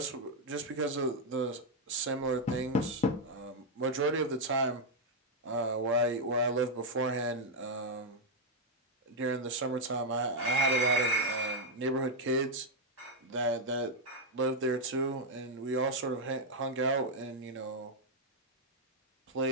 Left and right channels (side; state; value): both; normal; correlation 0.00